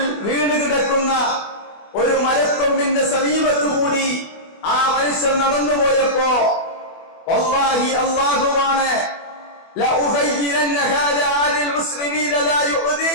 വീണ് കിടക്കുന്ന ഒരു മരക്കൊമ്പിന്റെ സമീപത്തുകൂടി ആ മനുഷ്യൻ നടന്നുപോയപ്പോ, വല്ലാഹി അല്ലാഹുവാണ്,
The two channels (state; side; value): late; right; 24 ms